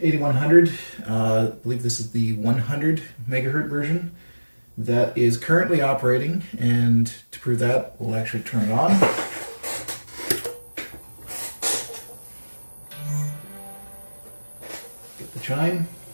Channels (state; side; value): inverted; both; correlation -1.00